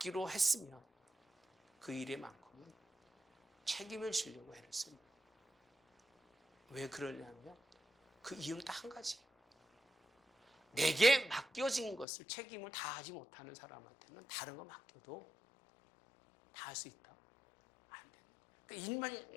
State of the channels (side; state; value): right; drops out; at 12.1 s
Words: 했으면 그 일에만큼은 책임을 지려고 애를 씁니다. 왜 그러냐면 그 이유는 딱 한 가지예요. 내게 맡겨진 것을 책임을 다하지 못하는 사람한테는 다른 거 맡겨도 다 할 수 있다? 안 되는 거예요. 그러니까